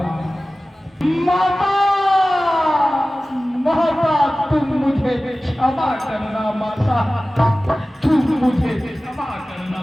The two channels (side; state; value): both; normal; correlation 0.97